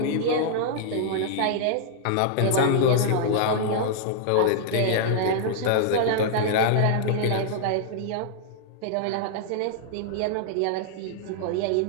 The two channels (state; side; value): different; both; correlation -0.01